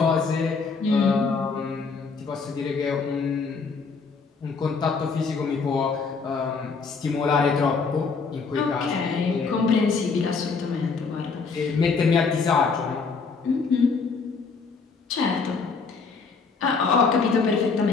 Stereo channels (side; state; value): right; quieter; 4.8 dB